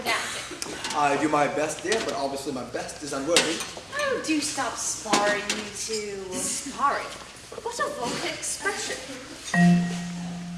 I do my best, dear, but obviously my best is unworthy. Oh, do stop sparring, you two. Sparring? What a vulgar expression.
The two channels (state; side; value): identical; both; correlation 1.00